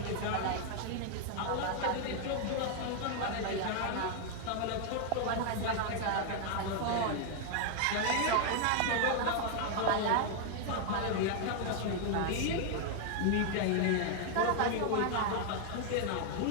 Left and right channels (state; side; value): different; both; correlation 0.00